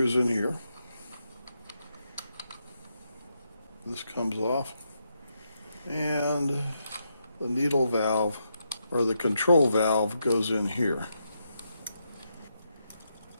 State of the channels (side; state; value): both; inverted; correlation -0.82